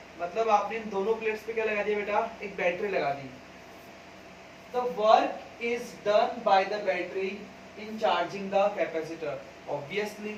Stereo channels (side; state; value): both; identical; correlation 1.00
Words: मतलब आपने इन दोनों प्लेट्स पे क्या लगा दिया बेटा? एक बैटरी लगा दी. The work is done by the battery in charging the capacitor. Obviously,